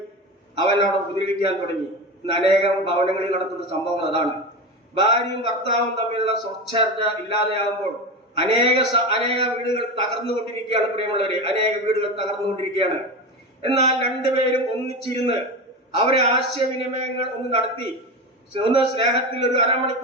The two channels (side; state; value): both; normal; correlation 0.23